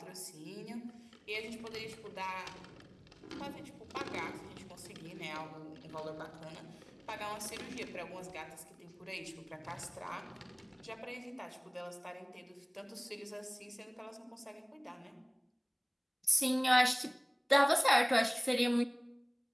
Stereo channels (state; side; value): identical; both; correlation 1.00